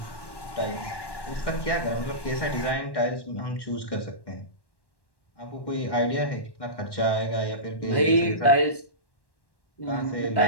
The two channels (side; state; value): right; late; 1.1 ms